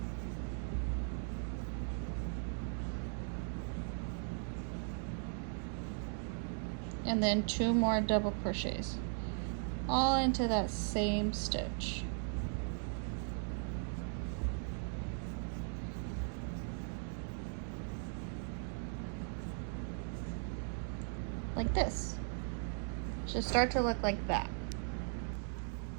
And then 2 more double crochets, all into that same stitch. Like this. Should start to look like that.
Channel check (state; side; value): silent; left; 52 dB below the other